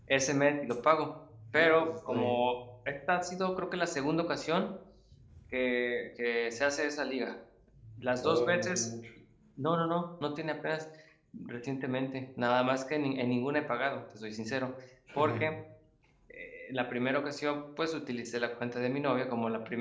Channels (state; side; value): identical; both; correlation 1.00